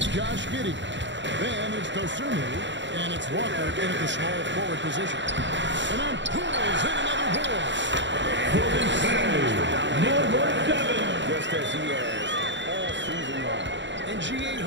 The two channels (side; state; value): left; late; 0.53 ms